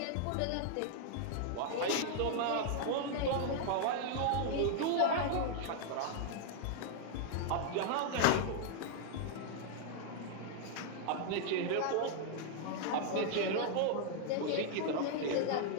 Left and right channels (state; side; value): different; both; correlation -0.01